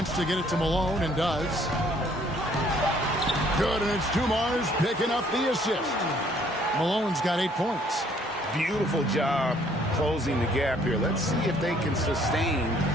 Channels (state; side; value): normal; both; correlation 0.62